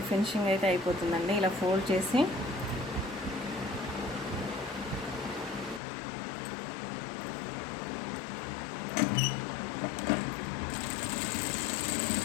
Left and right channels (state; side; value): drops out; right; at 5.8 s